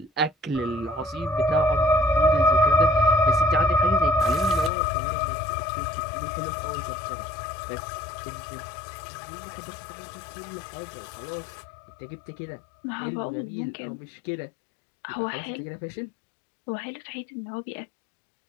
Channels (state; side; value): drops out; right; at 4.7 s